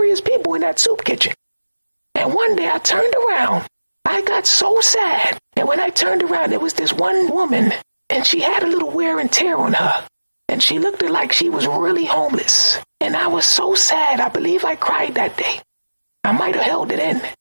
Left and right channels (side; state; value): both; inverted; correlation -1.00